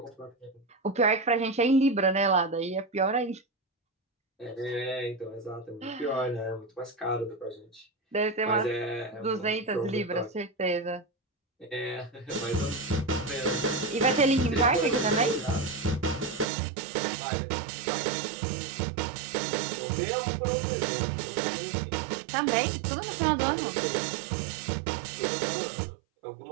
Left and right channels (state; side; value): drops out; left; at 16.4 s